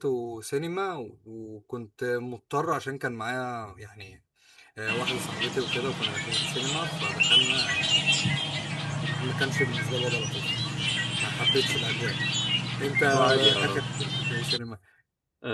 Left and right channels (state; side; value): identical; both; correlation 1.00